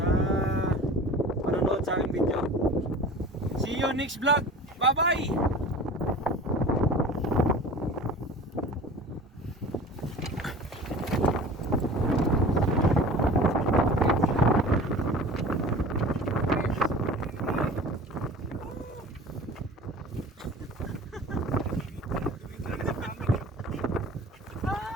panonood sa aking video. See you next vlog. Bye-bye!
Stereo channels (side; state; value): both; normal; correlation 0.40